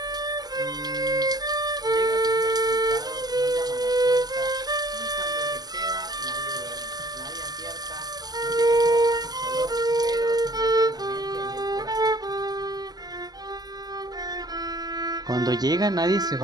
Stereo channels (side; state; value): left; late; 0.20 ms